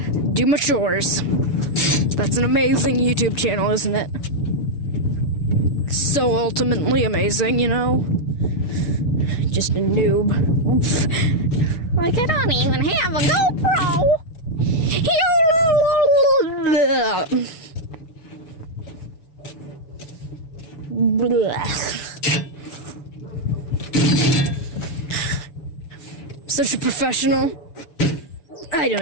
do my chores. That's an amazing YouTube channel, isn't it? So ultimately amazing, you know? Just a noob. Like, I don't even have a GoPro. Such a professional. I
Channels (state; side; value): late; right; 6.9 ms